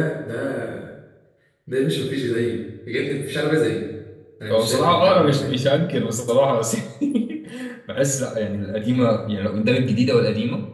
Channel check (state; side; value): identical; both; correlation 1.00